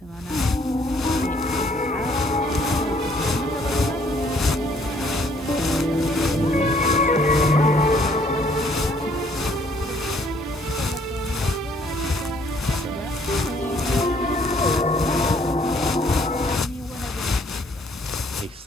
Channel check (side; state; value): both; normal; correlation 0.63